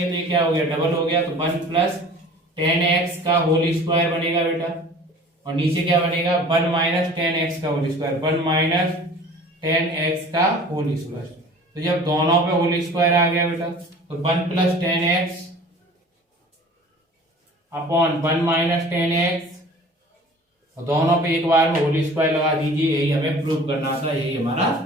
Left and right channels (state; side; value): normal; both; correlation 0.45